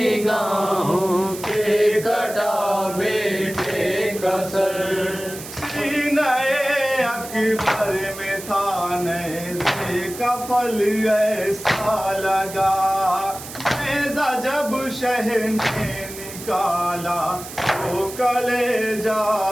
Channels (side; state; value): right; noise; hiss, 12 dB below the sound